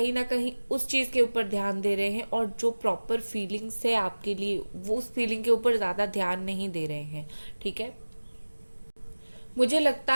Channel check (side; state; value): both; inverted; correlation -1.00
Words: ना कहीं उस चीज़ के ऊपर ध्यान दे रहे हैं, और जो प्रॉपर फीलिंग्स है आपके लिए वो उस फीलिंग के ऊपर ज़्यादा ध्यान नहीं दे रहे हैं। ठीक है, मुझे लगता